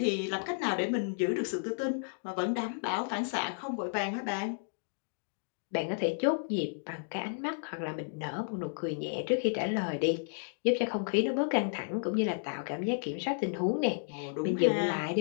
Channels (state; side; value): silent; right; digital silence